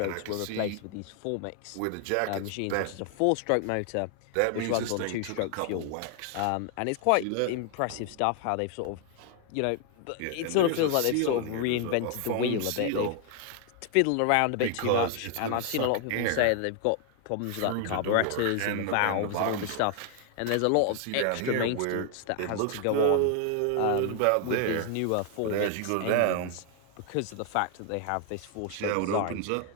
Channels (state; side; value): different; both; correlation 0.00